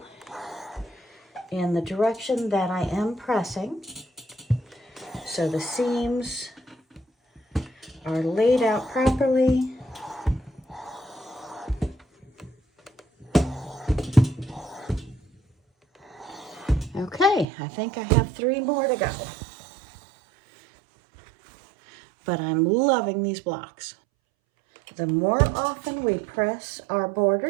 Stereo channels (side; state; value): left; drops out; at 17.4 s